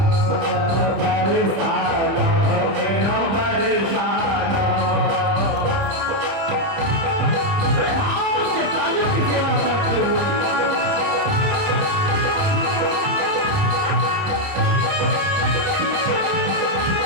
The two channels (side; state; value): left; late; 30 ms